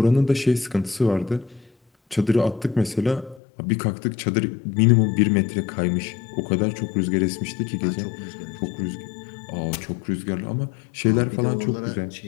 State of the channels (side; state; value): right; drops out; at 3.4 s